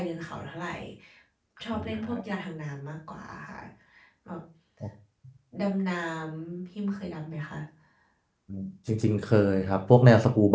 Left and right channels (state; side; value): identical; both; correlation 1.00